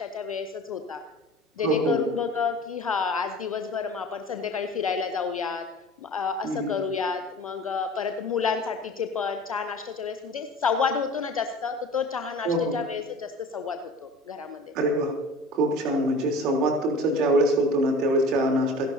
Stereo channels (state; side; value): normal; both; correlation 0.41